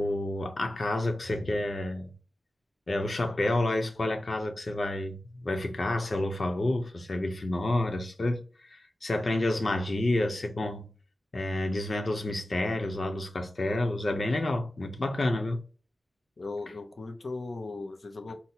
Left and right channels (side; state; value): both; normal; correlation 0.93